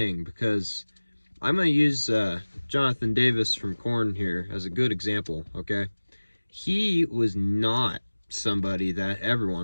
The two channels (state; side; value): inverted; both; correlation -1.00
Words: because I'm going to use Jonathan Davis from Korn here as a good example, okay? He was not somebody that